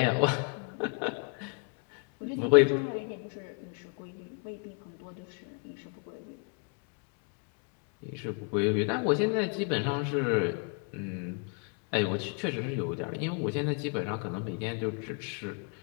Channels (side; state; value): right; quieter; 37.9 dB